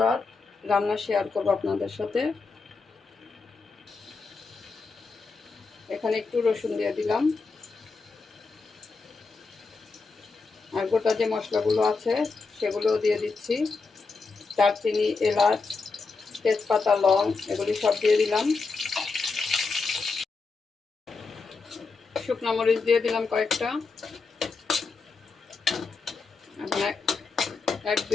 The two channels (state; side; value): quieter; right; 4.3 dB